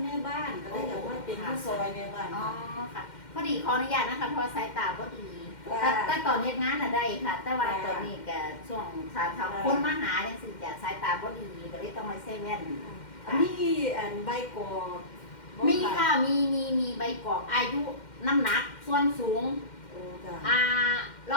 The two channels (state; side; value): late; right; 2.1 ms